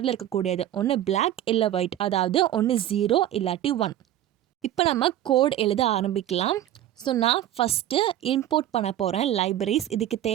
இருக்கக்கூடியது, ஒன்று பிளாக் இல்லை ஒயிட், அதாவது ஒன்று 0 இல்லாட்டி 1. இப்போ நம்ம கோட் எழுத ஆரம்பிக்கலாம். ஸோ நான் ஃபஸ்ட்டு இம்போர்ட் பண்ண போகிறேன் லைப்ரரிஸ். இதுக்கு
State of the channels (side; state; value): left; quieter; 12.5 dB